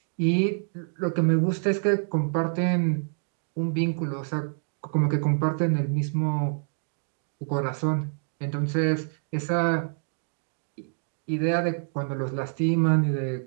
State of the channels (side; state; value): left; silent; digital silence